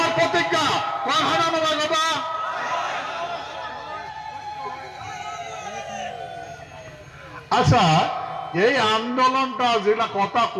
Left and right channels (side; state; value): both; identical; correlation 1.00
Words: প্রতিজ্ঞা। কথা আচ্ছা, এই আন্দোলনটা যেটা কথা